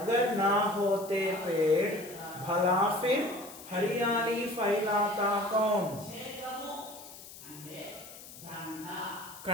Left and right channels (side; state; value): left; noise; hiss, 16 dB below the sound